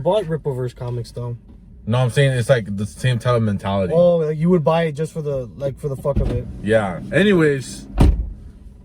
comics though. No, I'm saying it's like the same type of mentality. Oh, like you would buy it just for the fuck of it. Yeah. Anyways,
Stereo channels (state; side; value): identical; both; correlation 1.00